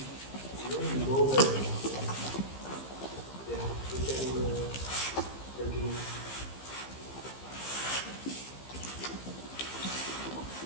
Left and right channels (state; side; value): late; right; 15 ms